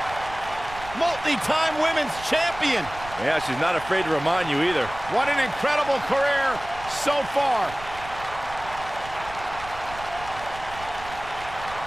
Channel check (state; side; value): noise; right; rumble, 15 dB below the sound